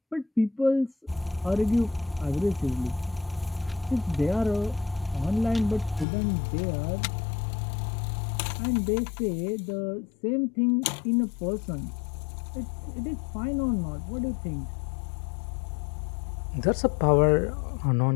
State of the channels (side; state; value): right; drops out; at 6.1 s